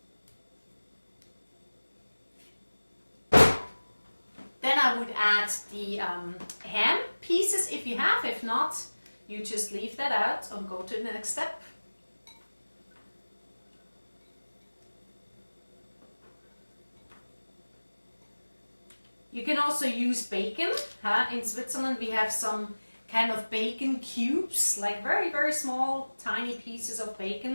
Then I would add the ham pieces if you have. If not, you just leave that out and go to the next step. You can also use bacon. In Switzerland we have some kind of bacon cubes, like very, very small, tiny pieces of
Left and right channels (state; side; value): inverted; both; correlation -1.00